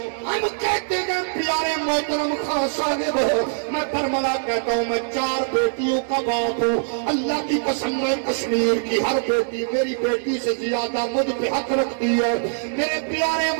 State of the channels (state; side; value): silent; left; 64 dB below the other